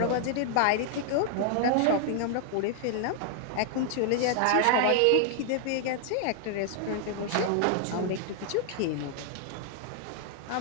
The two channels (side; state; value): both; different; correlation 0.00